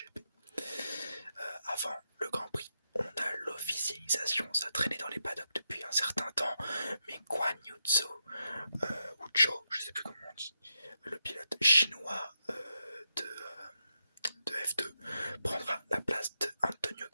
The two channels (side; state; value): both; inverted; correlation -0.84